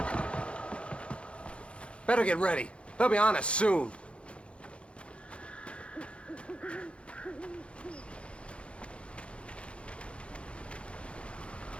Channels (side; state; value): right; late; 0.059 ms